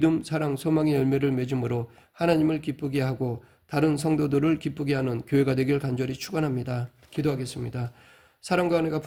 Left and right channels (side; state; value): both; identical; correlation 1.00